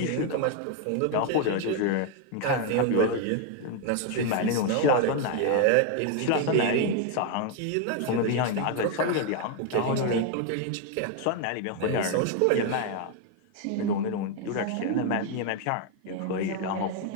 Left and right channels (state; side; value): different; both; correlation 0.01